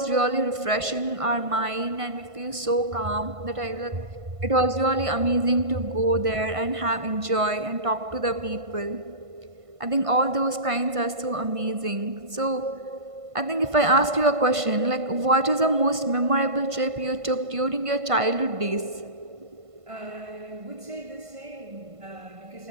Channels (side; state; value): left; late; 1.5 ms